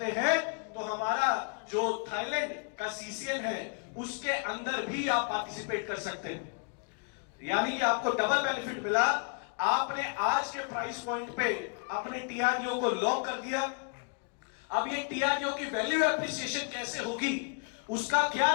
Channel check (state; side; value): quieter; right; 38.6 dB